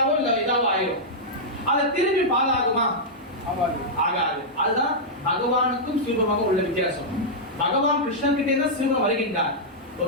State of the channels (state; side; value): normal; both; correlation -0.08